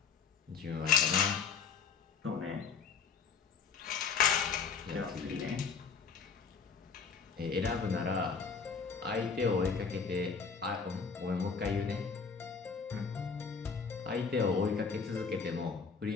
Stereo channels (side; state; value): right; quieter; 5.8 dB